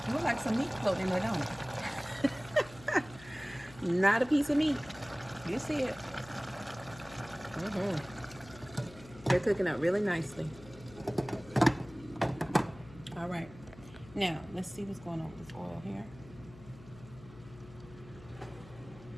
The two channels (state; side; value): noise; left; hum, 19 dB below the sound